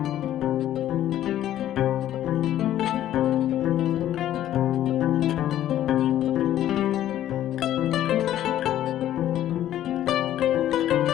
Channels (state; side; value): quieter; right; 12.3 dB